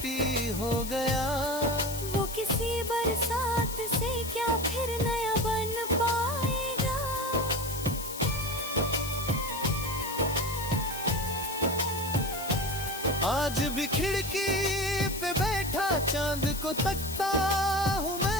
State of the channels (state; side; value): noise; left; hiss, 9 dB below the sound